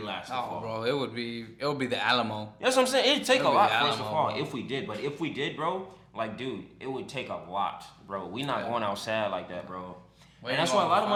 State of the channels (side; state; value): both; identical; correlation 1.00